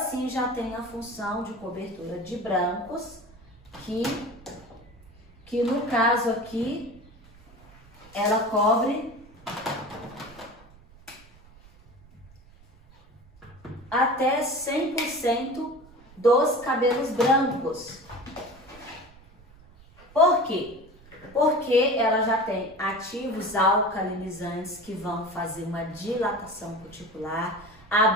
já tem a função de cobertura de brancos, que no caso aqui, ela cobre até 100% dos cabelos brancos. Por quê? Porque ela já tem ativos alcalinizantes que vão fazer uma dilatação cuticular,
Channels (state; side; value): noise; right; rumble, 24 dB below the sound